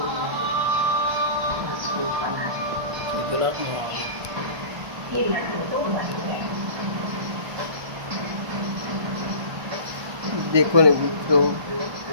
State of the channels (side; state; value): left; late; 1.4 ms